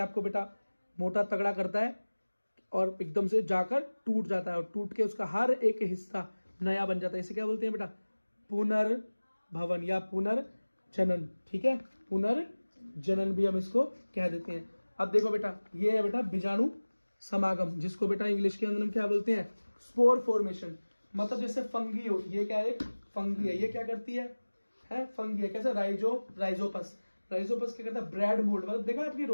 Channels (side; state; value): both; inverted; correlation -1.00